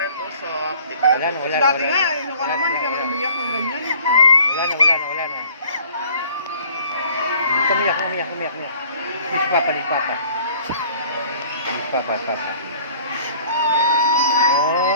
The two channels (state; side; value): inverted; both; correlation -0.53